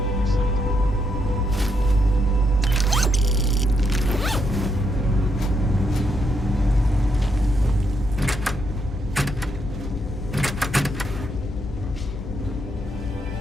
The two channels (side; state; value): left; noise; hum, 12 dB below the sound